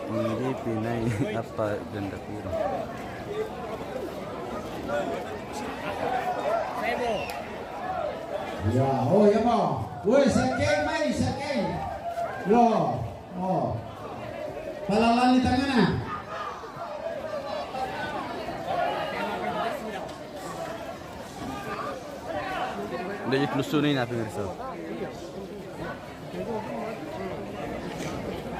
Hindi pinay apa ganda puro. Ya, oh ya mo. Woi, sakay mai, sakay. Yo, oh. Palalan di tangan na. Udah ditelusurin apa mirsa?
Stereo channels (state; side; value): identical; both; correlation 1.00